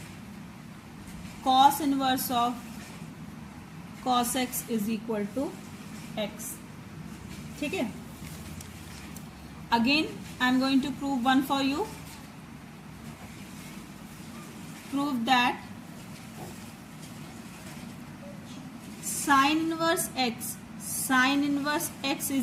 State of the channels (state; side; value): identical; both; correlation 1.00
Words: cos inverse of cos x is equal to x। ठीक है, again I am going to prove one for you. Prove that sin inverse x